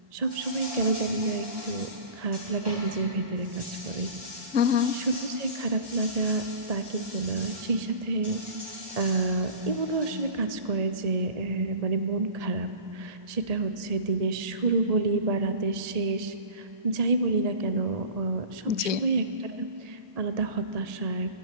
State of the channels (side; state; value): left; late; 1.8 ms